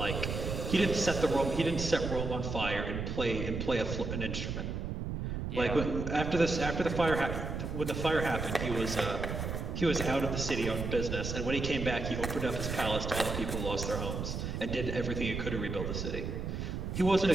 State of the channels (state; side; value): noise; right; rumble, 4 dB below the sound